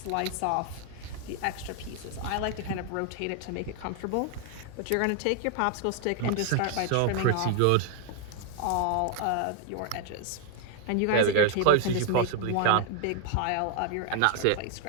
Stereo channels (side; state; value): both; different; correlation 0.00